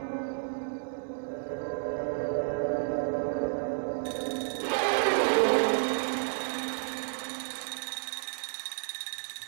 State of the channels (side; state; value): left; silent; digital silence